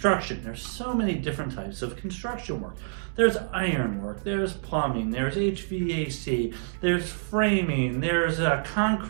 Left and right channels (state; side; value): silent; left; 60 dB below the other